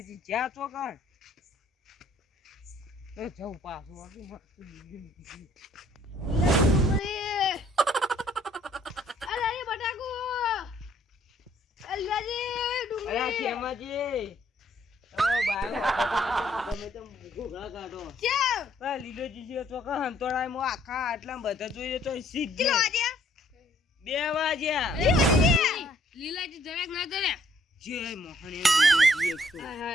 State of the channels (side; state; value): both; normal; correlation 0.64